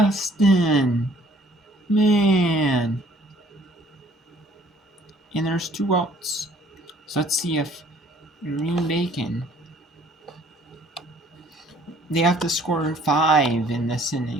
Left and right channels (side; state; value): both; normal; correlation 0.58